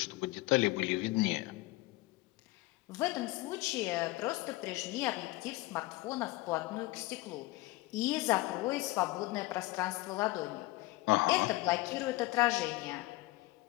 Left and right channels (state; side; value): quieter; right; 20.2 dB